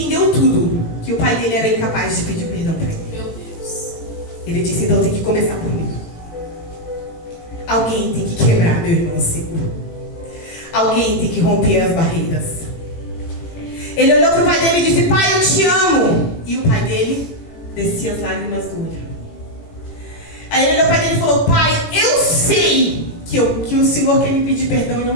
tudo, que o pai dele era incapaz de pedir perdão para ele. Meu Deus. Ele disse: então tem que começar por mim. Alguém tem que quebrar meu irmão seguro. Alguém tem que romper as barreiras. Ele olhou para o pai dele e disse: pai, eu te amo. E o pai dele descia as lágrimas do olho. Aí ele olhou para o pai dele e falou: pai, eu sei que o Senhor quer me pedir perdão e não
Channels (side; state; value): right; late; 18 ms